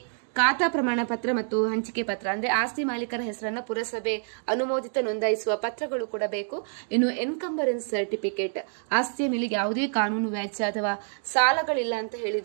ಖಾತಾ ಪ್ರಮಾಣ ಪತ್ರ ಮತ್ತು ಹಂಚಿಕೆ ಪತ್ರ ಅಂದ್ರೆ ಆಸ್ತಿ ಮಾಲೀಕರ ಹೆಸರನ್ನ ಪುರಸಭೆ ಅನುಮೋದಿತ ನೋಂದಾಯಿಸುವ ಪತ್ರಗಳು ಕೂಡ ಬೇಕು. ಇನ್ನು ಎನ್ಕಂಬರೆನ್ಸ್ ಸರ್ಟಿಫಿಕೇಟ್, ಆಸ್ತಿಯ ಮೇಲೆ ಯಾವುದೇ ಕಾನೂನು ವ್ಯಾಜ್ಯ ಅಥವಾ ಸಾಲಗಳಿಲ್ಲ ಅಂತ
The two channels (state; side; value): silent; left; digital silence